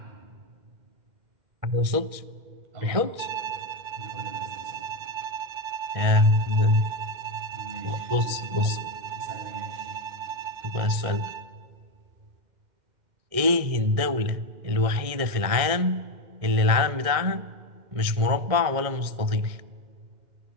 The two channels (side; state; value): left; late; 1.6 ms